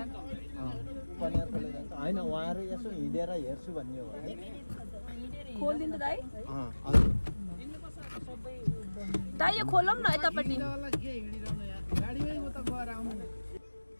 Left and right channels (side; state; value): both; inverted; correlation -1.00